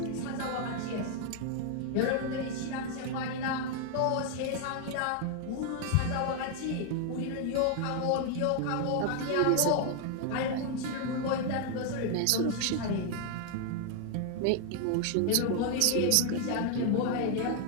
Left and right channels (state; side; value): different; both; correlation 0.00